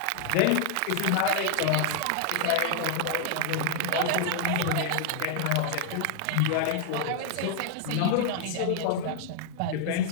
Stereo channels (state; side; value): different; both; correlation 0.00